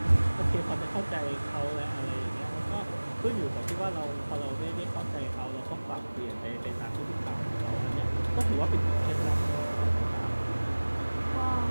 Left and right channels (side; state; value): both; inverted; correlation -1.00